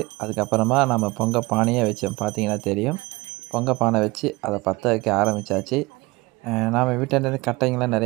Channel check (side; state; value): left; quieter; 22.8 dB